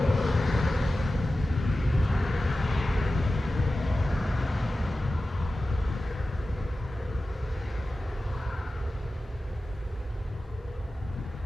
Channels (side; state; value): both; normal; correlation 0.95